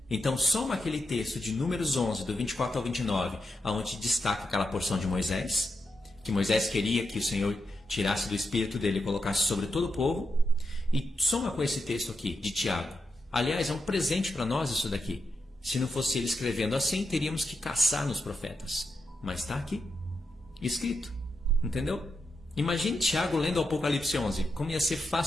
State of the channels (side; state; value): both; normal; correlation 0.86